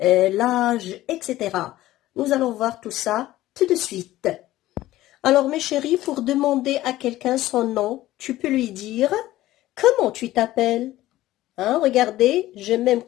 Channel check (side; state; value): right; quieter; 15.6 dB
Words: etc. Nous allons voir tout ça tout de suite. Alors, mes chéris, pour demander à quelqu'un son nom, tu peux lui dire « Comment tu t'appelles ?» Hein, regardez, j'ai même